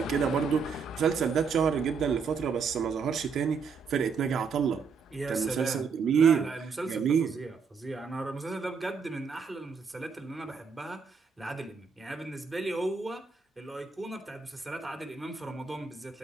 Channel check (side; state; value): left; quieter; 5.6 dB